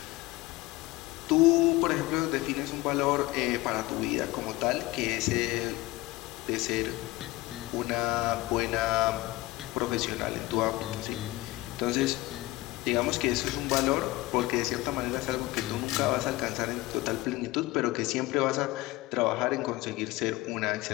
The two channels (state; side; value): quieter; right; 19.6 dB